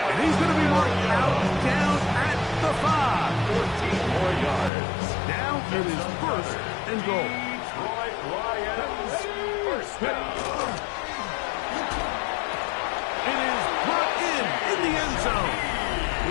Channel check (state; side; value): drops out; right; at 4.7 s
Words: he's gonna be marked out down at the 5. 14 more yards. Now it is 1st and goal. Detroit Lions first down. It is brought in the end zone.